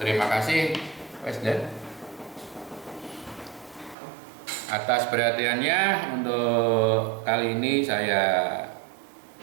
kasih, Presiden, atas perhatiannya. Untuk kali ini saya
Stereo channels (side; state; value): left; drops out; at 4.0 s